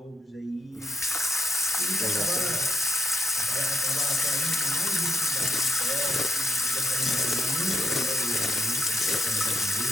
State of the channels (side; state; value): both; normal; correlation 0.77